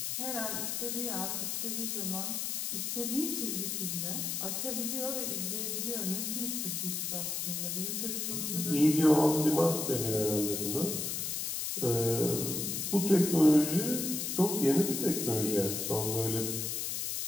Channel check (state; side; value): noise; left; hiss, 2 dB below the sound